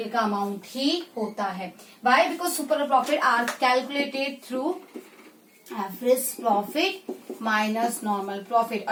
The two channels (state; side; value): identical; both; correlation 1.00